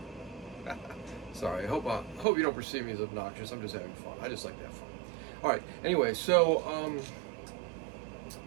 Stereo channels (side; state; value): left; drops out; at 2.2 s